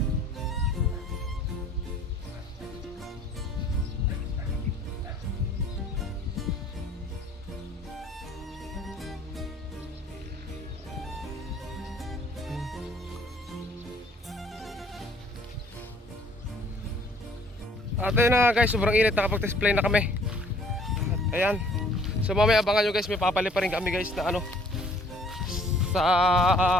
At ayun na guys, sobrang init, nakapag-test play na kami. At ayan. So mamaya abangan nyo guys, may papali pa rin kami guys na ano,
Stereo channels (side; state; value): both; normal; correlation 0.58